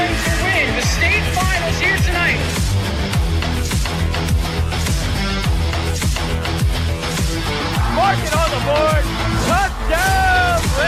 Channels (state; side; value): identical; both; correlation 1.00